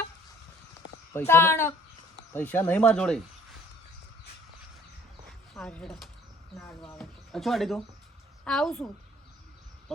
પૈસા તાણ પૈસા નહીં માર જોડે હાર હેડો નાડવા આવે અચ્છા આડી તું આવું છું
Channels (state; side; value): normal; both; correlation 0.56